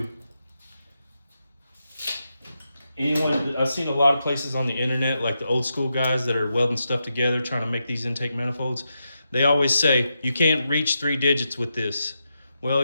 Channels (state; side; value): inverted; both; correlation -0.86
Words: I've seen a lot of places on the internet, like the old school guys that are welding stuff together, trying to make these intake manifolds. They always say, you can't reach 3 digits with this. Well,